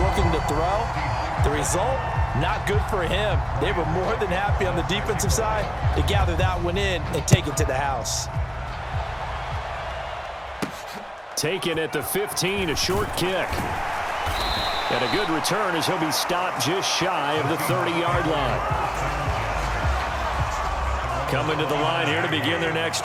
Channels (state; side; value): identical; both; correlation 1.00